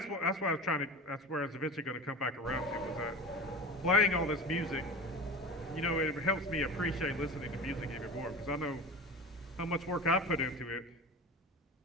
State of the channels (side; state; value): both; normal; correlation 0.31